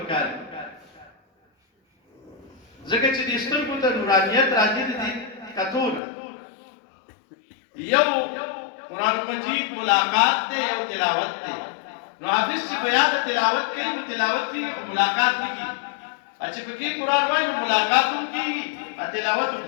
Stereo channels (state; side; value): drops out; right; at 6.0 s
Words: ځکه چې د سترګو ته نورانیت راځي دي کتون یو قرآن مجید ملاقات ته یو تلاوت ته نو حافظ چې بیا د تلاوت کوي نو تلاوت کی ملاقات نه کی چې پکې قرآن وایي ملاقات هم کی تلاوت هم